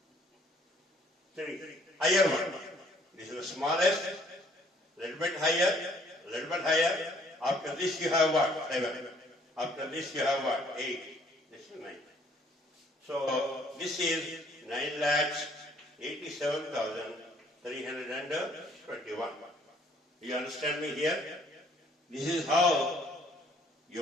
3. Higher one. This is the smallest. Little bit higher. Little bit higher. After this you have what? 7. After this you have what? 8. This is 9. So this is 9,87,321. You understand me here? This is how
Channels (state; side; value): normal; both; correlation 0.61